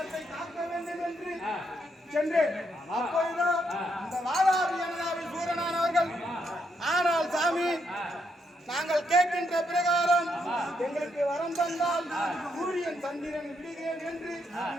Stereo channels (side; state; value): both; normal; correlation 0.77